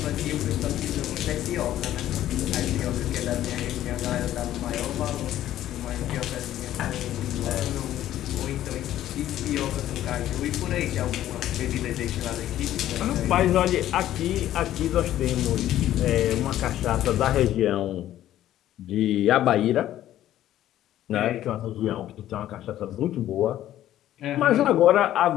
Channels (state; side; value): quieter; right; 12.8 dB